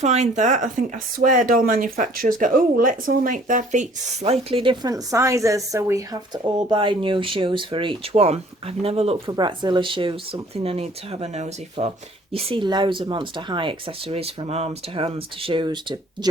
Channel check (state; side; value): normal; both; correlation 0.55